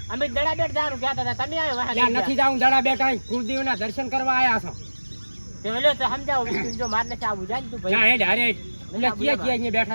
અમે દડા બેટ જારું કહેતા હતા તમે આવ્યો વાહ ત્યાં નથી જાઉં દડા બેટા, કુળદેવના દર્શન કરવા આયા છો. તે લે તો સમજાવો વિષ્ણુ જો માર ને આવું જાય ને તું ના ભાઈ. હેડ હારે હેડ. એટલે ક્યાં અહીંયા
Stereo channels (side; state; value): both; inverted; correlation -1.00